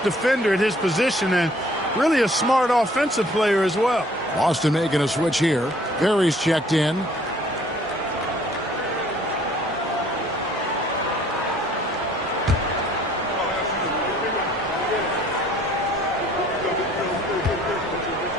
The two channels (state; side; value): normal; both; correlation 0.58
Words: at his position and really a smart offensive player as well. Boston making a switch here. Berry's checked in.